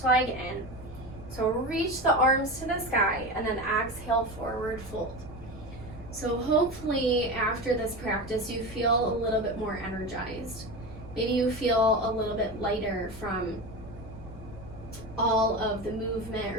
leg in. So reach the arms to the sky and then exhale, forward fold. So hopefully after this practice you feel a little bit more energized. Maybe you feel a little bit lighter from all of the movement,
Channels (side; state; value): right; noise; rumble, 20 dB below the sound